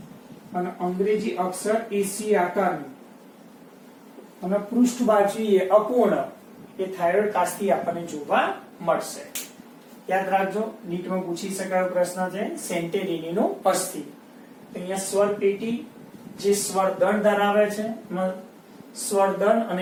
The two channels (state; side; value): identical; both; correlation 1.00